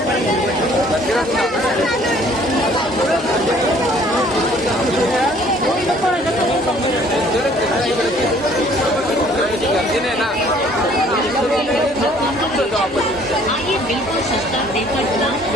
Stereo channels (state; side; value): normal; both; correlation 0.57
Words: गर्दी नाही ना आइए बिल्कुल सस्ता देकर ग्लास